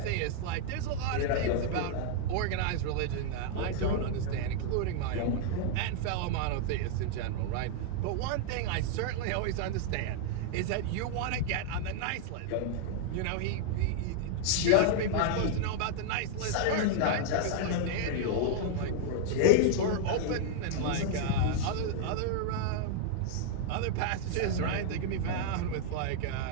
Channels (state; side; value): different; both; correlation 0.00